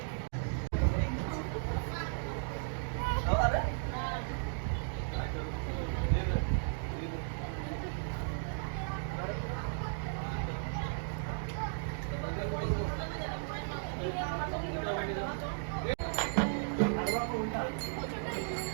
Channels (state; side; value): silent; left; digital silence